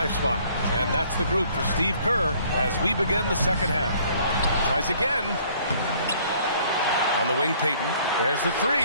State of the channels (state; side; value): inverted; both; correlation -0.59